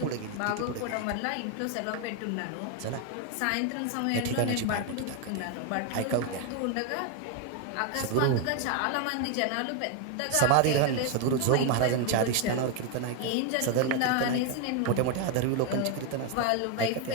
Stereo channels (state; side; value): different; both; correlation 0.01